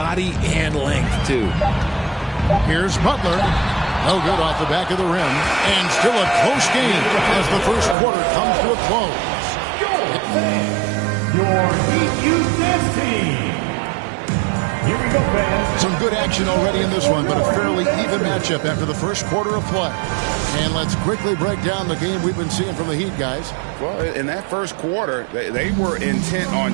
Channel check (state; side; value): drops out; left; at 8.0 s